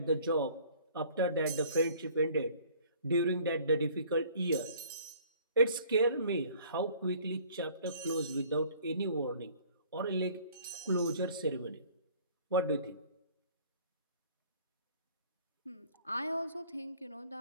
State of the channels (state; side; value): inverted; both; correlation -0.54